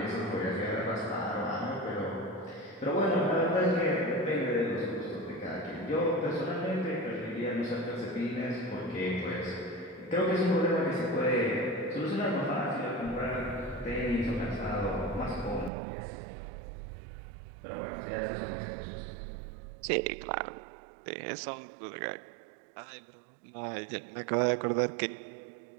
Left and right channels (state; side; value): drops out; left; at 15.7 s